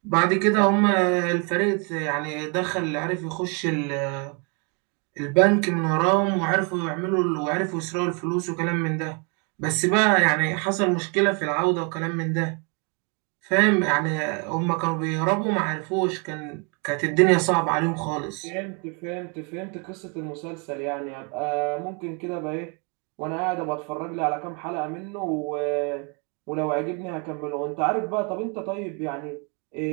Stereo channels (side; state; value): left; quieter; 34.6 dB